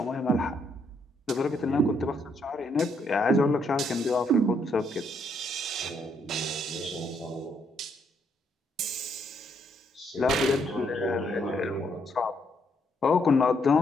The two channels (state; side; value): normal; both; correlation 0.73